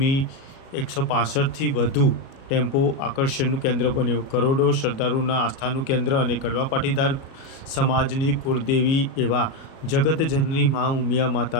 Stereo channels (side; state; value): right; late; 37 ms